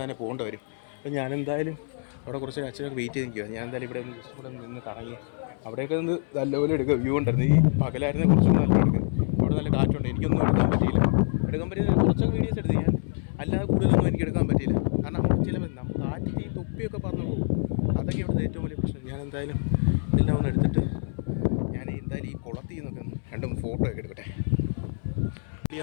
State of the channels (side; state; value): right; silent; 61 dB below the other